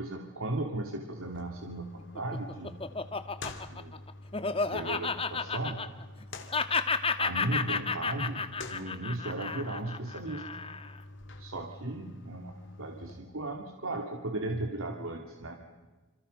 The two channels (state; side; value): normal; both; correlation -0.02